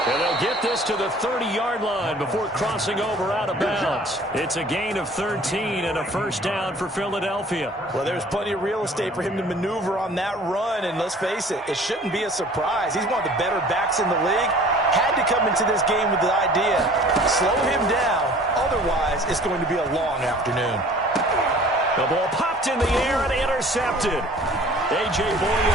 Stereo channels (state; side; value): normal; both; correlation 0.49